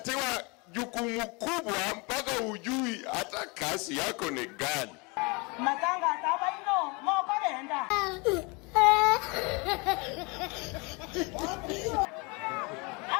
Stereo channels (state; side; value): quieter; right; 28.9 dB